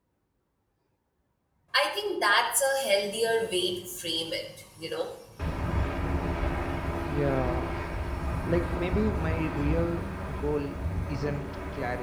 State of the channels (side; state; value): both; identical; correlation 1.00